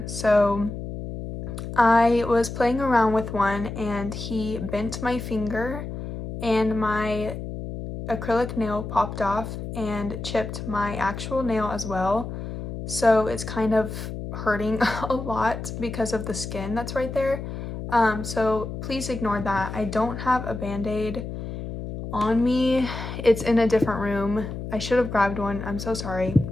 so I was playing around with one and he bent my finger and my acrylic nail popped off and chipped my actual nail as well. So it's kind of hurting a lot because of the skin that's right there. So please ignore that. I don't have a band-aid on me. It's in a different room. I should have grabbed one. I'm so sorry.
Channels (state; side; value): noise; left; hum, 7 dB below the sound